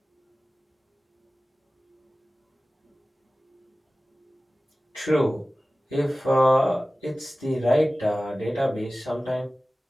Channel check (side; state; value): both; normal; correlation 0.97